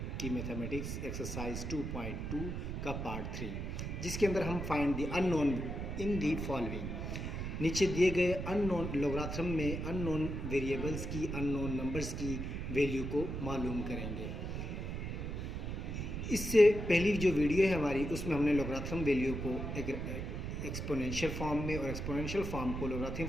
की मैथमेटिक्स एक्सरसाइज 2.2 का पार्ट 3, जिसके अंदर हम find the unknown in the following. नीचे दिए गए अननोन लोगारिथम में अननोन वेरिएबल्स की, अननोन नंबर्स की वैल्यू को मालूम करेंगे। इससे पहली जो वीडियो है हमारी, उसमें हमने लोगारिथम वैल्यू को एक एक्सपोनेंशियल फॉर्म में और एक्सपोनेंशियल फॉर्म को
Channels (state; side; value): noise; right; rumble, 4 dB below the sound